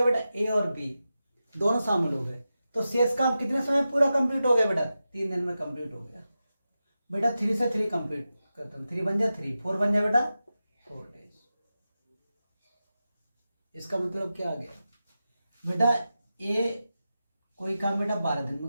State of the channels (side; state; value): both; inverted; correlation -0.92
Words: बेटा? ए और बी दोनों शामिल हो गए। तो शेष काम कितने समय पूरा कंप्लीट हो गया बेटा? 3 दिन में कंप्लीट हो गया बेटा। 3 से 3 कंप्लीट करता हूँ, 3 बन जाए 3, 4 बन जाए बेटा 4 डेज। इसका मतलब क्या आ गया बेटा? ए कोई काम बेटा 12 दिन में